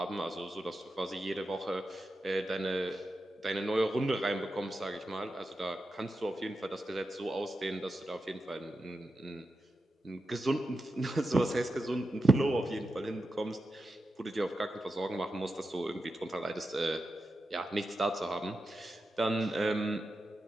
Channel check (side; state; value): both; normal; correlation 0.90